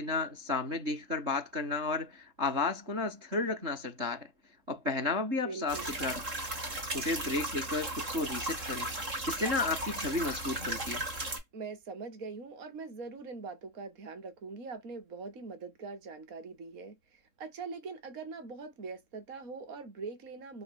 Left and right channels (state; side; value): late; left; 3.7 ms